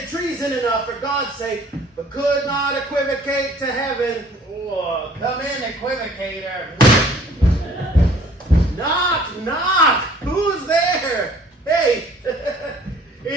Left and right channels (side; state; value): both; normal; correlation 0.54